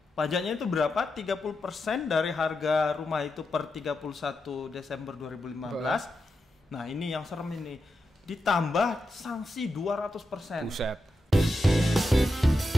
Pajaknya itu berapa? 30% dari harga rumah itu per 31 Desember 2015. Nah, ini yang serem ini. Ditambah sanksi 200%. Buset.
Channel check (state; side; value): normal; both; correlation 0.88